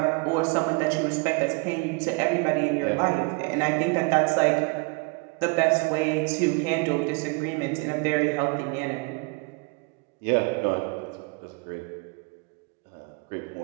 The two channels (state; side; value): quieter; left; 29.8 dB